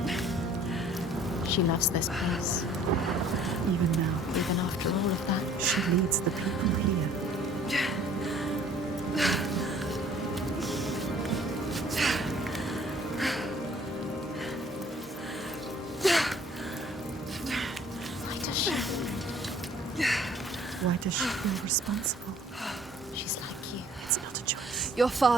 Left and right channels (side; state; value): both; normal; correlation 0.55